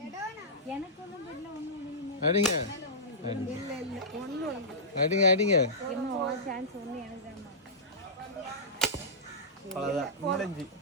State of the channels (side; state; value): both; normal; correlation -0.16